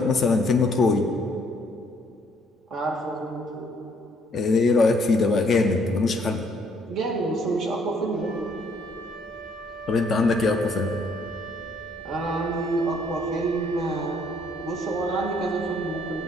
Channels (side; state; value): both; normal; correlation 0.66